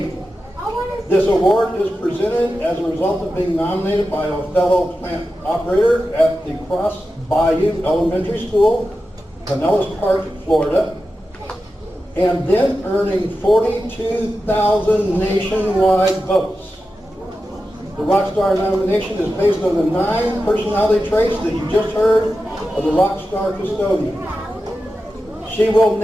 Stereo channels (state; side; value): normal; both; correlation 0.91